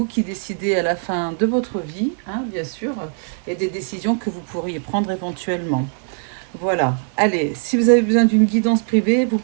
qui décidez à la fin de votre vie, hein, bien sûr, et des décisions que vous pourriez prendre éventuellement. Voilà, allez, si vous avez besoin d'une guidance privée, vous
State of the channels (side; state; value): left; silent; 59 dB below the other